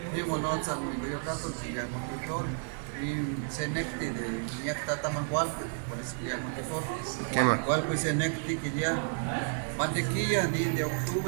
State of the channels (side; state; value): left; silent; 57 dB below the other